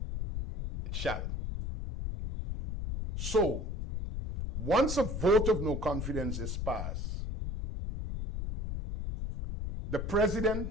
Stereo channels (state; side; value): noise; left; rumble, 4 dB below the sound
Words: it shall. So, once a vote of no confidence is passed, The